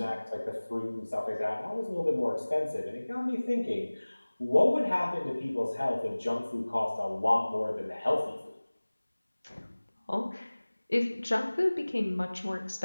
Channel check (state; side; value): inverted; both; correlation -1.00